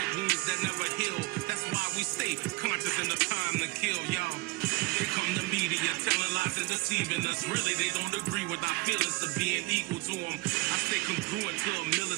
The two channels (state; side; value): quieter; left; 23.2 dB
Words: wounds that never heal. That's why we stay conscious in the time to kill, y'all. Here come the media telling lies and deceiving us. Really, they don't agree with our feelings of being equal to them. I stay congruent to a